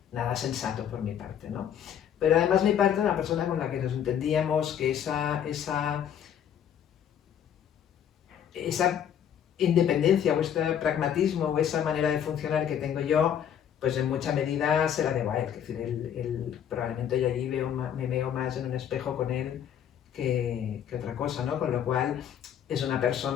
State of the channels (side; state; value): right; quieter; 9.2 dB